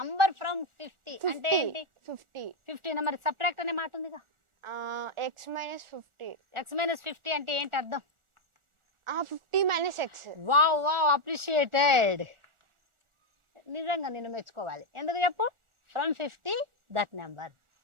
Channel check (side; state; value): left; late; 1.4 ms